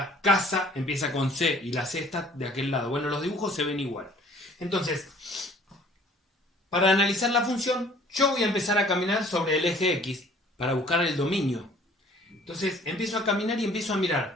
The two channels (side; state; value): both; normal; correlation 0.54